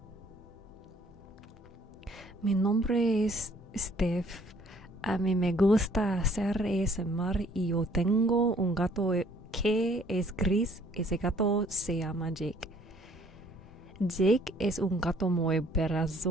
Mi nombre es Steph. A mí me gusta hacer ASMR y yo tengo un gato que es gris. Ese gato se llama Jake. Jake es un gato muy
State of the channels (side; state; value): both; normal; correlation 0.60